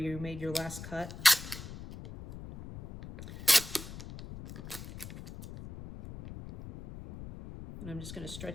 made your last cut. And I'm just going to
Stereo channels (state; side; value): noise; left; rumble, 12 dB below the sound